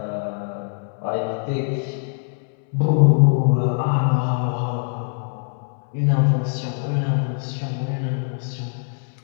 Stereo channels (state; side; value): silent; right; digital silence